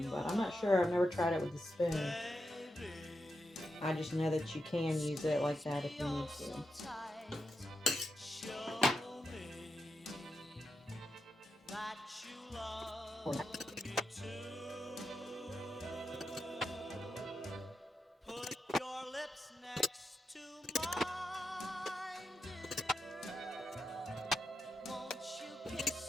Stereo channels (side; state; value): both; normal; correlation 0.85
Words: but I'm not sure. I've never tried it with the spoon. I just know that you can use it like that if you need to.